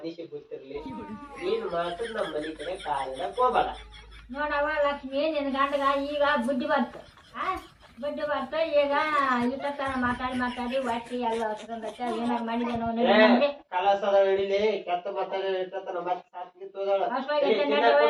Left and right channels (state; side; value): identical; both; correlation 1.00